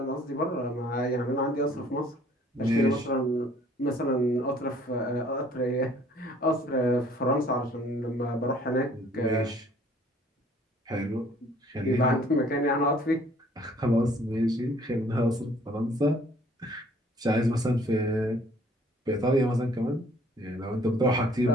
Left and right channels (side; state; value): both; normal; correlation 0.57